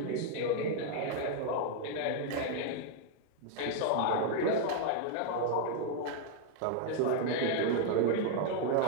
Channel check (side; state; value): both; different; correlation 0.00